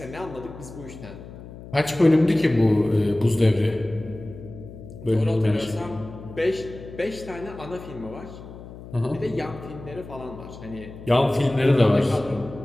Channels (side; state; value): left; noise; hum, 15 dB below the sound